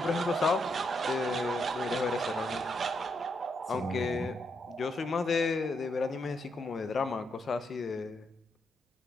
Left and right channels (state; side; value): normal; both; correlation 0.79